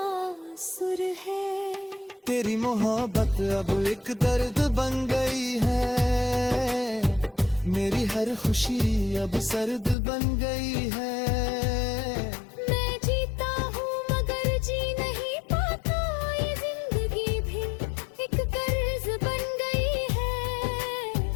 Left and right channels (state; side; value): drops out; right; at 10.0 s